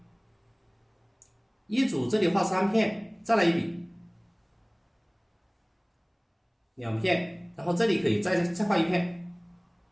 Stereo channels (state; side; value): identical; both; correlation 1.00